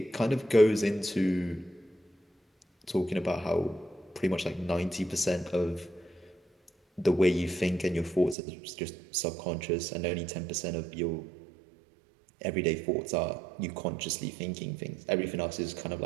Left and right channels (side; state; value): left; drops out; at 8.3 s